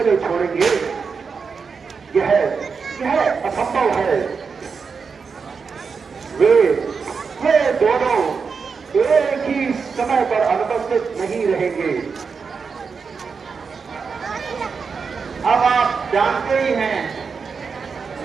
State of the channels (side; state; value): left; quieter; 5.4 dB